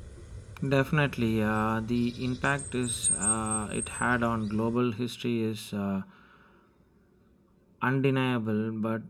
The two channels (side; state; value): both; identical; correlation 1.00